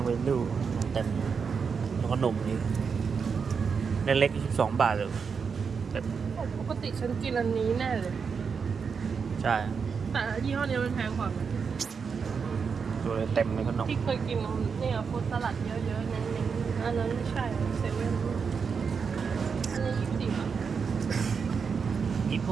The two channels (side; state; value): left; quieter; 5.9 dB